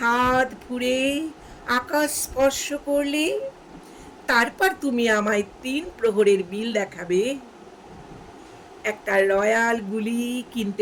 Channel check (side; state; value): both; identical; correlation 1.00